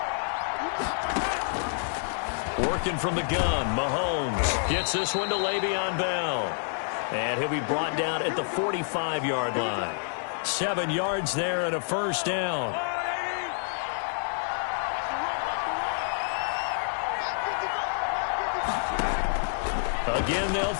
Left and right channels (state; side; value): silent; right; digital silence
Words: Working from the gun, Mahomes gets this one to Le'Veon Bell. And he'll be brought down at the 45-yard line. 7 yards there and a first down. Again, they'll